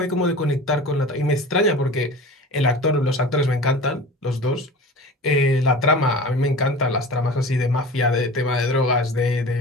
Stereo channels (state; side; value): normal; both; correlation 0.37